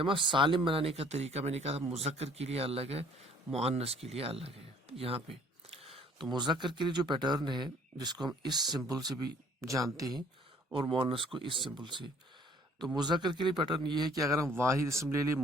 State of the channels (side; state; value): both; normal; correlation 0.57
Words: سالم بنانے کا طریقہ میں نے کہا مذکر کے لیے الگ ہے، مؤنث کے لیے الگ ہے۔ یہاں پہ تو مذکر کے لیے جو پیٹرن ہے، جس کو ہم اس سمبل سے بھی جانتے ہیں اور مؤنث کو اس سمبل سے، تو مذکر کے لیے پیٹرن یہ ہے کہ اگر ہم واحد اسم لے لیں